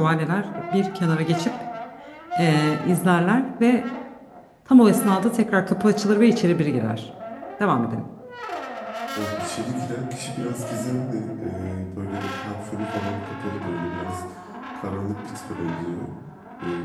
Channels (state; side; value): identical; both; correlation 1.00